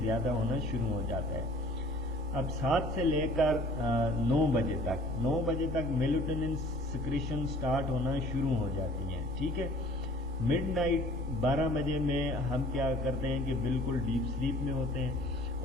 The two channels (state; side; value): normal; both; correlation 0.51